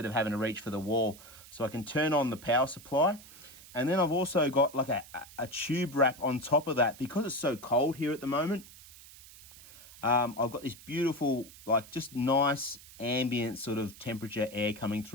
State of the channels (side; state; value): right; noise; hiss, 19 dB below the sound